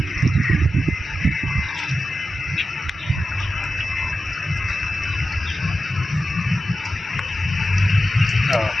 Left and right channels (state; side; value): normal; both; correlation 0.91